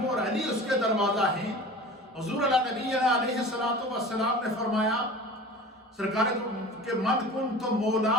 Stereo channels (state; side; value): normal; both; correlation 0.38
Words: اور علی اس کے دروازہ ہیں۔ حضور نبی علیہ السلام نے فرمایا سرکار کہ من کنت